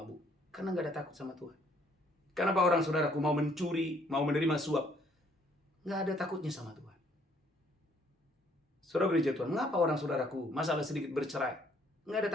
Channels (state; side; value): normal; both; correlation 0.65